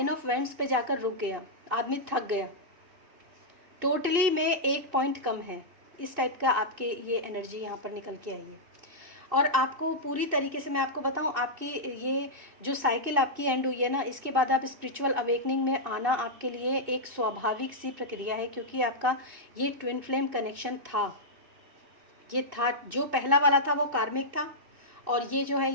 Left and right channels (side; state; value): left; late; 2.6 ms